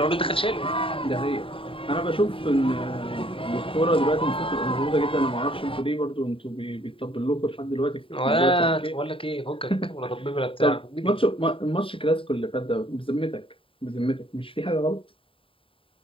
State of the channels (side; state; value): right; late; 0.26 ms